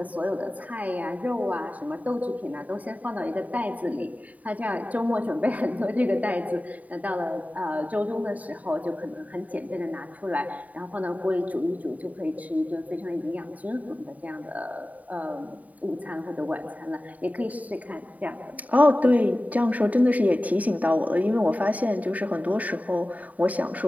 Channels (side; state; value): left; late; 0.072 ms